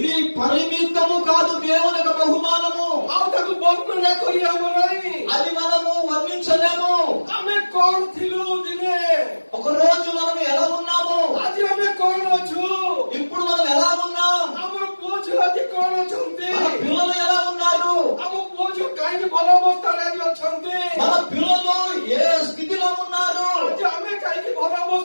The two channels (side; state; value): both; inverted; correlation -1.00